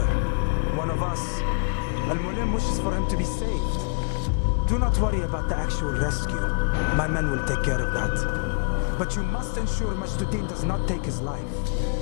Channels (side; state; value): right; quieter; 36.7 dB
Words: One of us. Al-Muallim wishes for him to be saved. Do not worry about the actual rescue. My men will take care of that. But you must ensure Majduddin does not take his life.